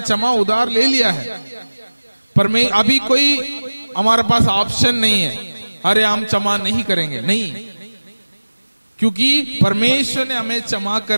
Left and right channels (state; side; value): inverted; both; correlation -1.00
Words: क्षमा उधार ले लिया है। अभी कोई हमारे पास ऑप्शन नहीं है, अरे हम क्षमा नहीं करेंगे, नहीं, क्योंकि परमेश्वर ने हमें क्षमा